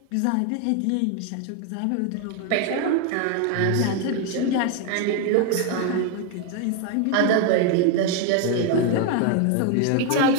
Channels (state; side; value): different; both; correlation 0.01